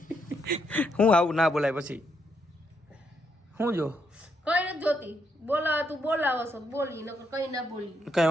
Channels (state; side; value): normal; both; correlation 0.77